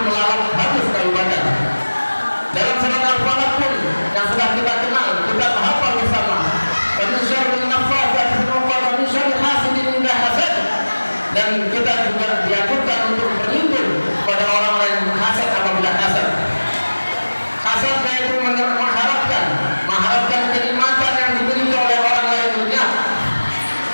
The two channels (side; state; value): both; inverted; correlation -1.00